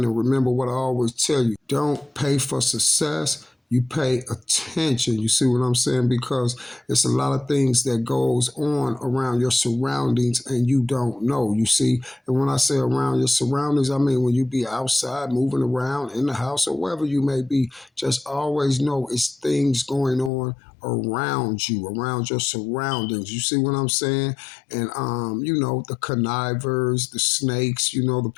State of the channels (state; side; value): drops out; right; at 20.3 s